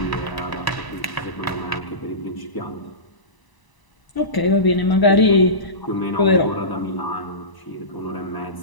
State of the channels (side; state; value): right; late; 1.0 ms